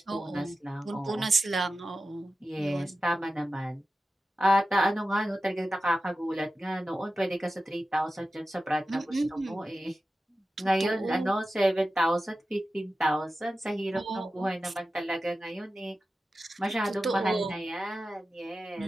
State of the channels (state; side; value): normal; both; correlation 0.93